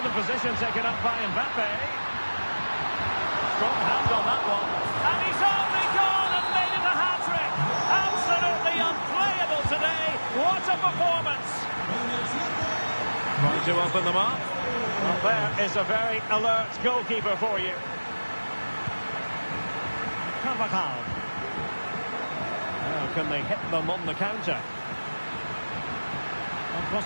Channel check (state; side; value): inverted; both; correlation -1.00